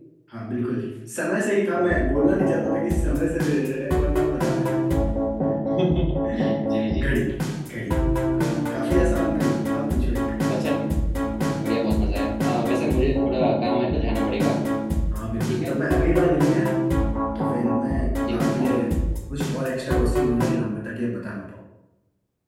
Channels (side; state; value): both; identical; correlation 1.00